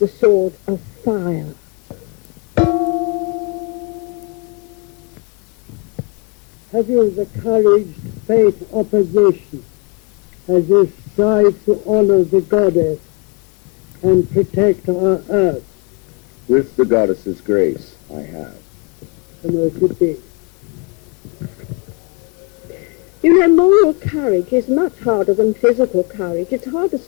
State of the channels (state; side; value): quieter; right; 32.3 dB